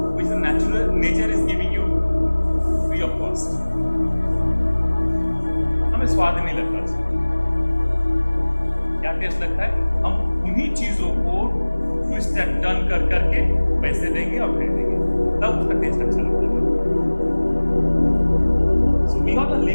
which the nature is giving you free of cost. हमें स्वाद नहीं लगता उसमें. क्या टेस्ट लगता है? हम उन्हीं चीजों को ट्विस्ट एंड टर्न कर करके पैसे देंगे और फेंक देंगे, तब उसका टेस्ट अच्छा लगता है. So we all are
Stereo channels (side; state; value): both; inverted; correlation -1.00